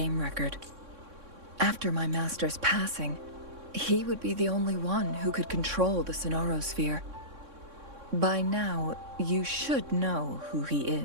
record. After my master's passing, he would be the only one who could control the Sonorosphere. By now, you should know who he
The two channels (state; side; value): late; left; 3.6 ms